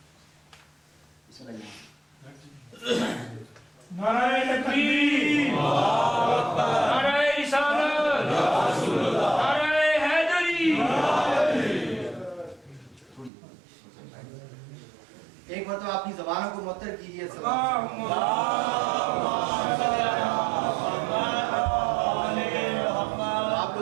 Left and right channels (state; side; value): drops out; left; at 13.3 s